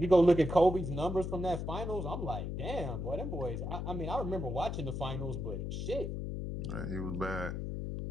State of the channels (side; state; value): left; noise; hum, 4 dB below the sound